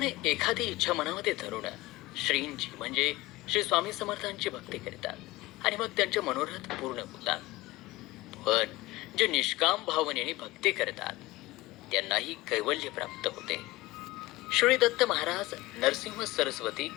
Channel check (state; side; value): quieter; right; 19.4 dB